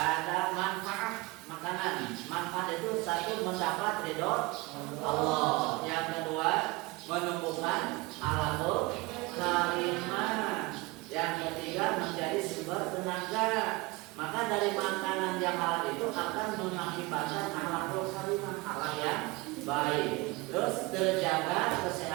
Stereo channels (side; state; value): left; quieter; 23.5 dB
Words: manfaat makanan. Manfaat itu satu mendapat ridho Allah. Yang kedua menumbuhkan alaqul karimah. Yang ketiga menjadi sumber tenaga. Maka dari makanan yang halal itu akan mengakibatkan alaqul karimah, halal yang baik. Terus terjaga